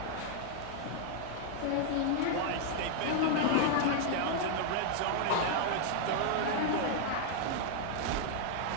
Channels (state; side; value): different; both; correlation 0.00